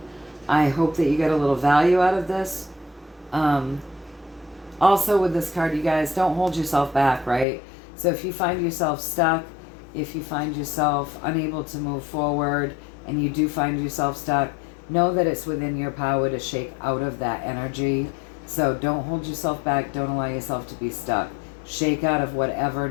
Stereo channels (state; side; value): drops out; right; at 7.5 s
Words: I hope that you get a little value out of this. Also with this card, you guys, don't hold yourself back, right? So if you find yourself stuck, if you find yourself unable to move forward, and you do find yourself stuck, know that it's within your power to shake out of that energy. So don't hold yourself back. Don't allow yourself to be stuck. Shake out of whatever